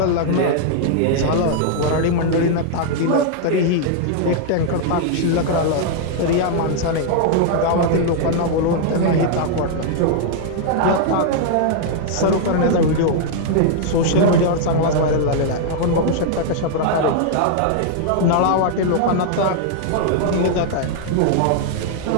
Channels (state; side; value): different; both; correlation -0.01